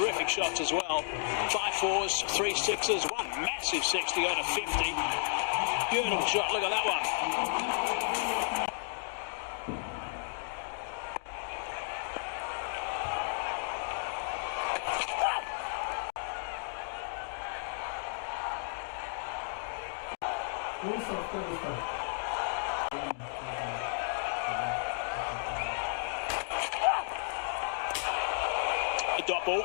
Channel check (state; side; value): silent; right; digital silence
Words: shots as well. 5 4s, 3 6s, one massive 6 to go to 50. Beautiful shot, look at that one. The dot ball